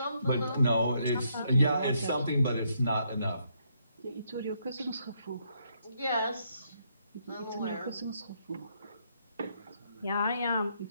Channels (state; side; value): inverted; both; correlation -0.74